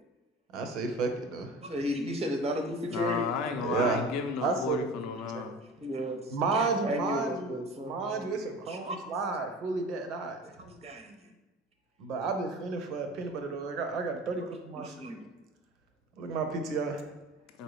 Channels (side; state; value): both; normal; correlation 0.38